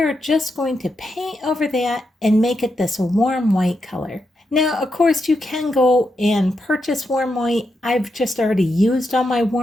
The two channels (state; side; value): normal; both; correlation 0.84